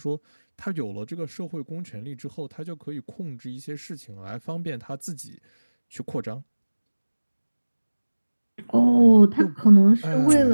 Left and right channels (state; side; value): inverted; both; correlation -1.00